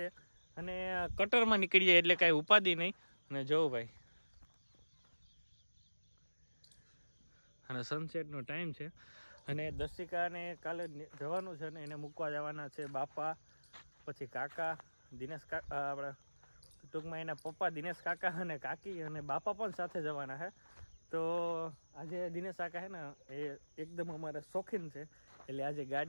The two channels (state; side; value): inverted; both; correlation -1.00